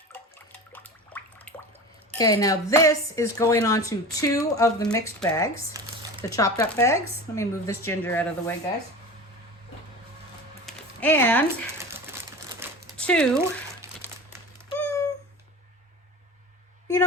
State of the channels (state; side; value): normal; both; correlation 0.33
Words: Okay, now this is going on to 2 of the mixed bags, the chopped up bags. Let me move this ginger out of the way, guys. And 2, you